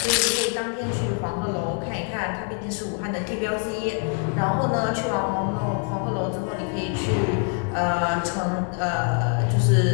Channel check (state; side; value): quieter; right; 39.7 dB